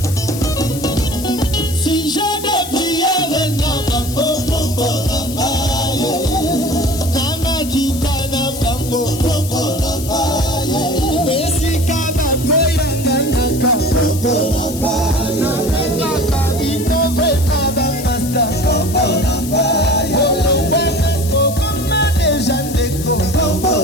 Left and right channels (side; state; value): left; noise; hiss, 11 dB below the sound